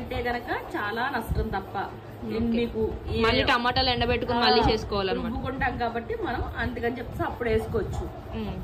గనక చాలా నష్టం తప్ప మీకు మళ్ళీ టమాటాలు ఎండబెట్టుకుని మళ్ళీ చేసుకోవాలన్నమాట. రుబ్బుకుంటాం కాబట్టి మనం అందుకని చెప్పేసి అప్పుడు వేసుకోవచ్చు.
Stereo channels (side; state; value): both; identical; correlation 1.00